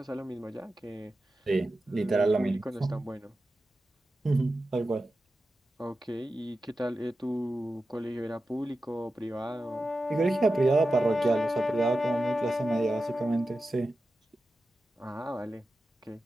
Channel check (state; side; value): normal; both; correlation 0.92